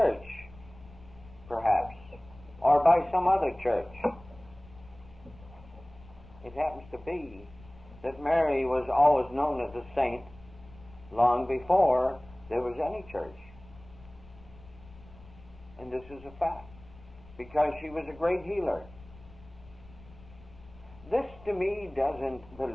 perhaps, or by some other church. It happens to be that Mary was always known as a saint long before there was any church. And this is a fact, because she was a great healer. This to me doesn't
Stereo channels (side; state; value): left; noise; rumble, 21 dB below the sound